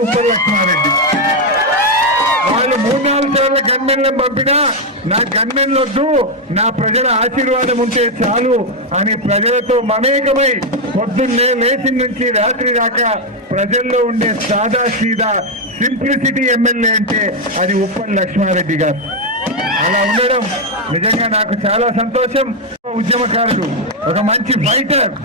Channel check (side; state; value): both; normal; correlation 0.03